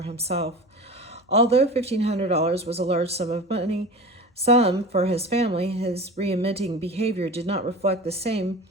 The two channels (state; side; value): normal; both; correlation 0.33